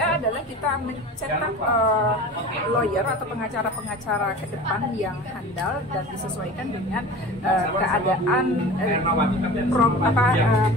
adalah kita mencetak lawyer atau pengacara-pengacara ke depan yang handal dan disesuaikan dengan keadaan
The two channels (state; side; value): normal; both; correlation 0.36